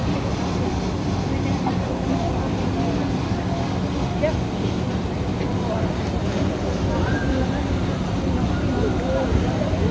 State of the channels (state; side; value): identical; both; correlation 1.00